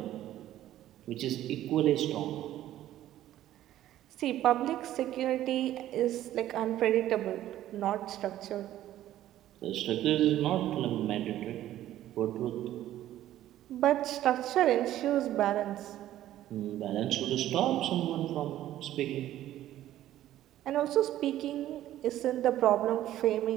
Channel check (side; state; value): left; quieter; 13.2 dB